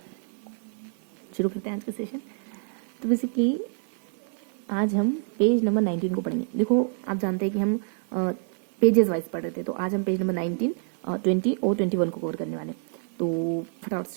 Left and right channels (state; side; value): silent; left; 60 dB below the other